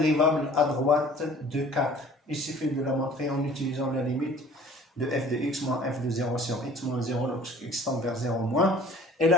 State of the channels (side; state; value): both; normal; correlation 0.49